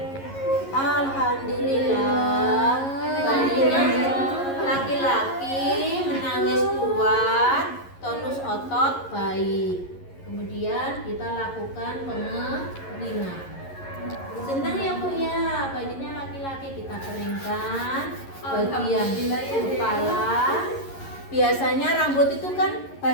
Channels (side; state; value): right; late; 11 ms